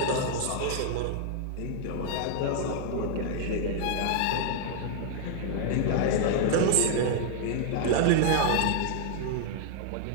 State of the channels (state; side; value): different; both; correlation -0.01